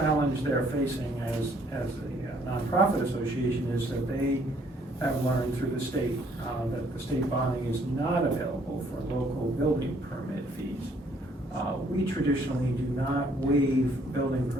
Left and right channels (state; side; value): normal; both; correlation 0.64